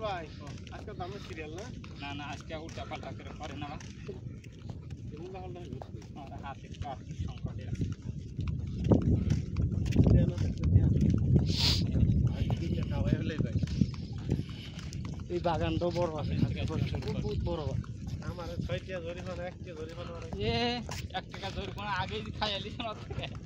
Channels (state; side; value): identical; both; correlation 1.00